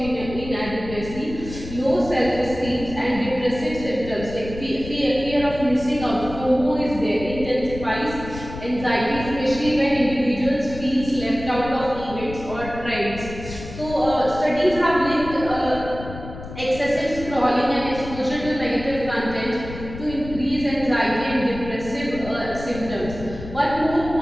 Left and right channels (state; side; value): noise; left; rumble, 11 dB below the sound